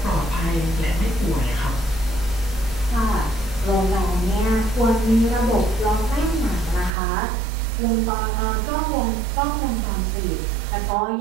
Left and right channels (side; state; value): left; drops out; at 6.9 s